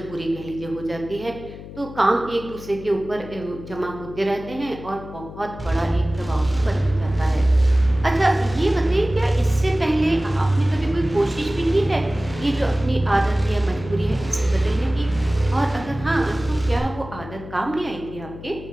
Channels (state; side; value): noise; left; hum, 14 dB below the sound